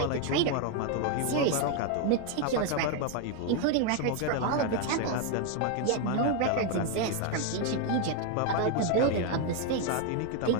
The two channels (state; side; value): different; both; correlation 0.01